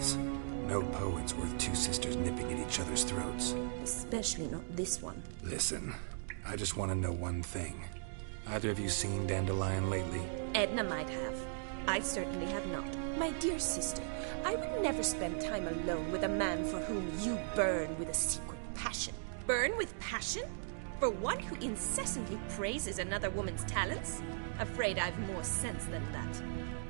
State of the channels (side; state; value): left; silent; digital silence